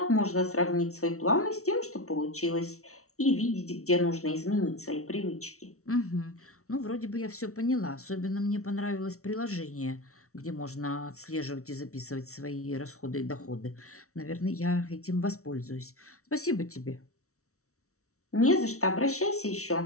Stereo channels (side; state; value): right; late; 0.64 ms